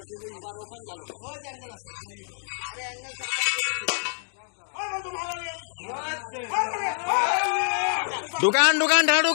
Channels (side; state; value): right; silent; 59 dB below the other